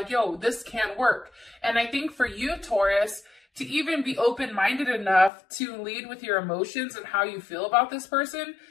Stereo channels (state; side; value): drops out; right; at 5.3 s